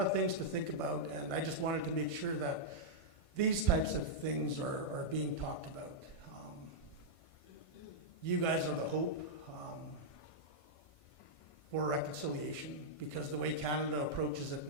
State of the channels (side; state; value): right; late; 1.5 ms